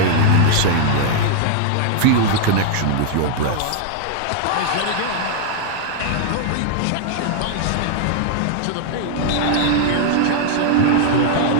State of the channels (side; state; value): both; different; correlation -0.01